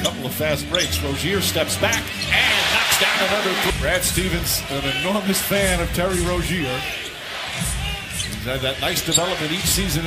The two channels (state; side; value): identical; both; correlation 1.00